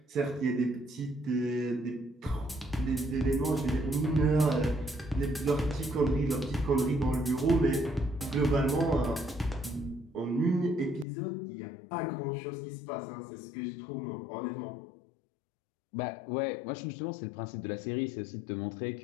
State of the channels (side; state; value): right; drops out; at 11.1 s